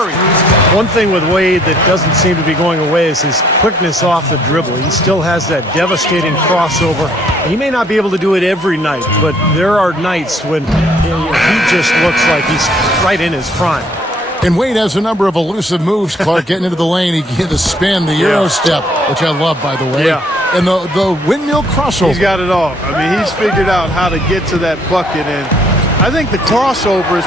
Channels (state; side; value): normal; both; correlation 0.63